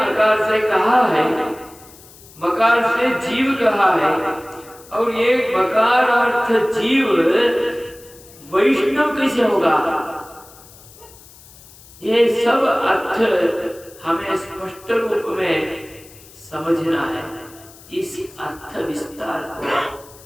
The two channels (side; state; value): left; noise; hiss, 22 dB below the sound